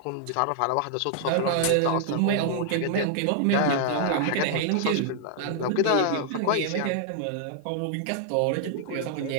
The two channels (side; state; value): both; different; correlation -0.01